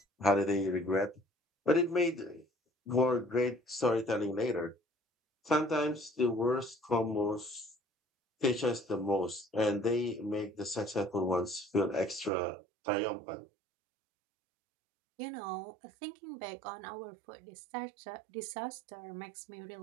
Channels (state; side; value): drops out; left; at 12.3 s